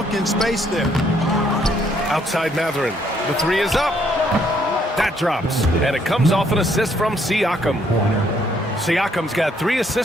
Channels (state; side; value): normal; both; correlation 0.69